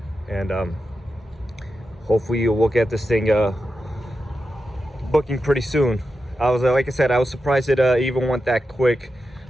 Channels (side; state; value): both; normal; correlation 0.89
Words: And hopefully we'll get this thing booking pretty soon. I was like I said, I was surprised it even went that quick.